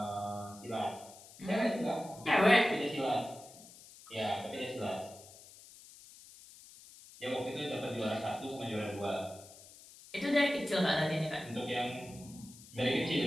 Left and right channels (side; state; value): left; noise; hiss, 20 dB below the sound